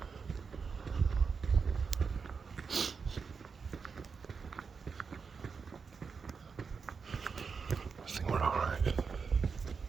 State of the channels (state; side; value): quieter; left; 5.4 dB